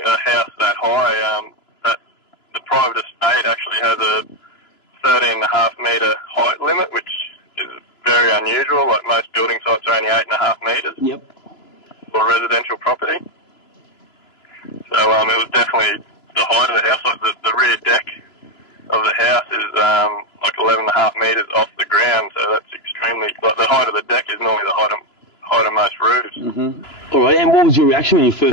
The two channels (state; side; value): late; right; 2.9 ms